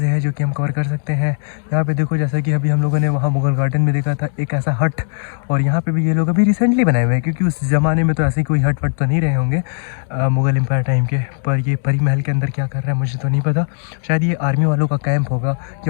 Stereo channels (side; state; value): right; silent; digital silence